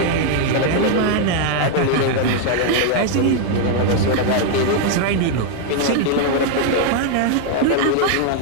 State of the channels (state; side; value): different; both; correlation 0.00